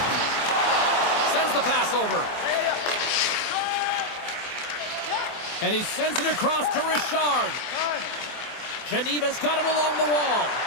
Sends the pass over. And he sends it across to Richard. Geneva's got it along the wall.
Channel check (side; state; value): right; late; 24 ms